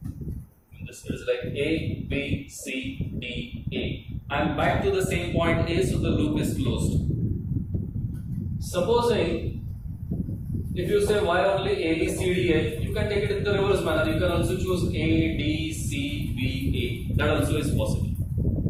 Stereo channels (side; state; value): both; identical; correlation 1.00